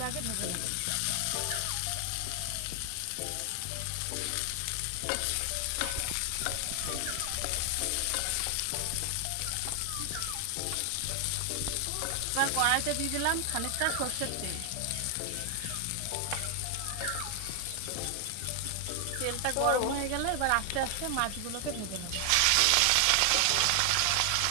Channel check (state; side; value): different; both; correlation 0.00